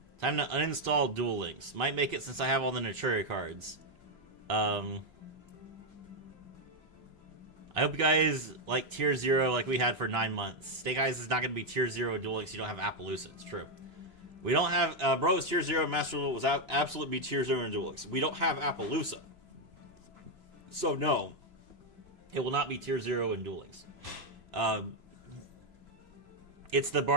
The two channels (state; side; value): late; left; 2.9 ms